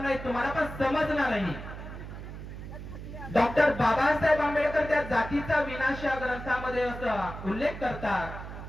तुम्हाला, पण समजणारही। डॉक्टर बाबासाहेब आंबेडकर त्या जातीचा विनाश या ग्रंथामध्ये असा उल्लेख करतात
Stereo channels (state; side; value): noise; right; hum, 10 dB below the sound